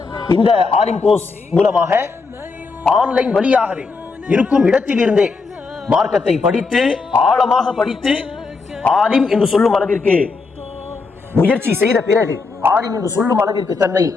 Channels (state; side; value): quieter; right; 4.3 dB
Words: இந்த ஆலிம் கோர்ஸ் மூலமாக ஆன்லைன் வழியாகவே இருக்கும் இடத்தில் இருந்தே மார்க்கத்தை படித்து ஆழமாக படித்து ஆலிம் என்று சொல்லும் அளவிற்கு முயற்சி செய்த பிறகு ஆலிம் என்று சொல்லும் அளவிற்கு தன்னை